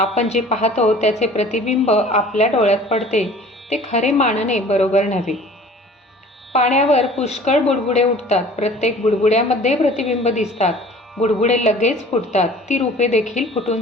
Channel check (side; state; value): both; normal; correlation 0.47